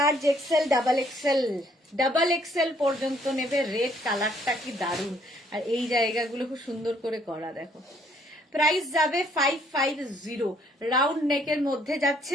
XL double XL, double XL পর্যন্ত নেবে। রেড কালারটা কি দারুণ, আর এই জায়গাগুলো খুব সুন্দর করে করা, দেখো। প্রাইস যাবে 550। রাউন্ড নেকের মধ্যে যাচ্ছে,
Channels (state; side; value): normal; both; correlation 0.66